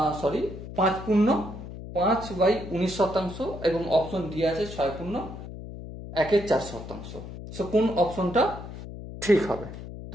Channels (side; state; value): left; noise; hum, 11 dB below the sound